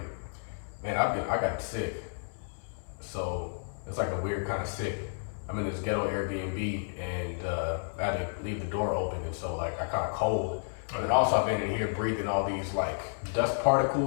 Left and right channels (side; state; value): right; silent; 57 dB below the other